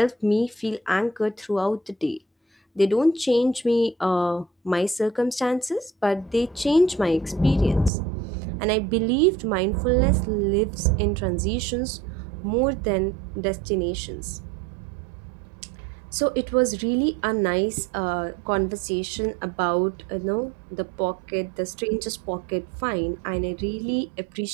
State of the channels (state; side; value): drops out; left; at 7.9 s